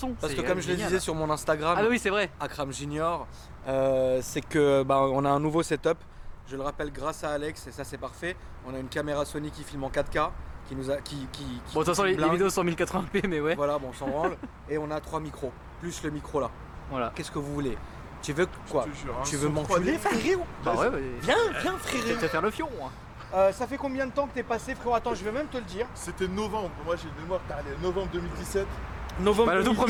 Parce que C'est comme je le génial. disais sur mon Instagram, Ah bah oui, c'est vrai. Akram Junior, c'est que on a un nouveau setup. Je le rappelle grâce à Alex et ça c'est parfait. On a une caméra Sony qui filme en 4K, qui nous a, qui Bon, de toute façon, les blingue. vidéos sont en 1080p, mais ouais. Voilà, bon, on s'en branle. Et on a 3 micros, plus le micro là. Voilà. Qu'est-ce que vous voulez? Tu veux quoi? Je te jure, hein, Tu veux son m'enculer, 3D. frérot? Bah ouais, Viens, je vais frérot. te faire le fion. Hein. Ça fait combien de temps que t'es passé, frérot? Attends, je vais même te le dire. C'était novembre, moi j'ai une mémoire, allez, novembre 2017. Novembre Bah, le tout 2017,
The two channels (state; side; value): identical; both; correlation 1.00